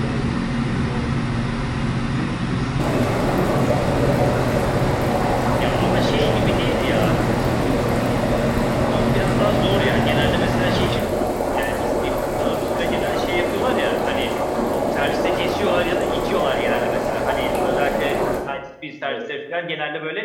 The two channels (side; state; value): both; identical; correlation 1.00